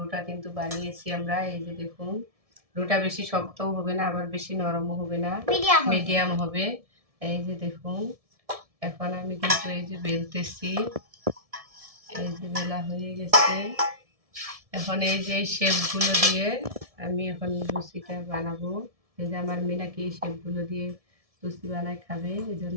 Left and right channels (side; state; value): left; late; 1.7 ms